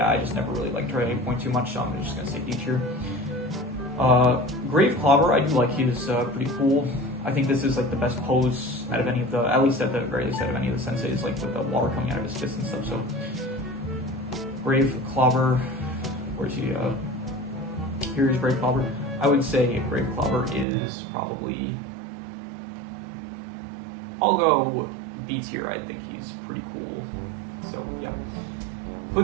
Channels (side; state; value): left; drops out; at 20.7 s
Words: I just never really liked her at any point too much, so I'm just gonna say D tier. Grave Clobber, I do like. He's pretty cool. I think this is like the best pose out of any of the, at least at the very least out of any of the senseis, like with the water coming out of his fist and stuff. So Grave Clobber, where's he? Here's Grave Clobber. I would say Grave Clobber is probably, I'll go B tier. I think he's pretty cool. So yeah.